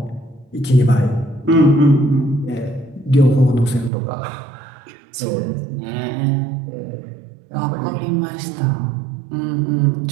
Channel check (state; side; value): drops out; left; at 3.9 s